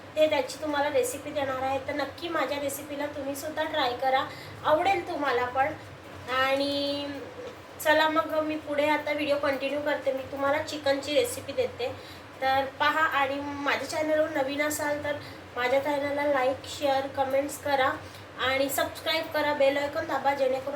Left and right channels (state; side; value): identical; both; correlation 1.00